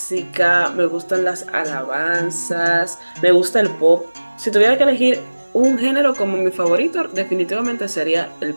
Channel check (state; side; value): inverted; both; correlation -1.00